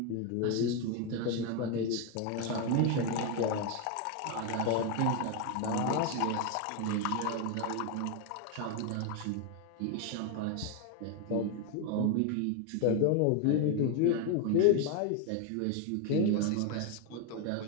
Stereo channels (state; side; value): different; both; correlation 0.01